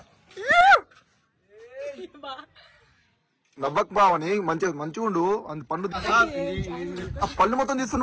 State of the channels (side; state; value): both; identical; correlation 1.00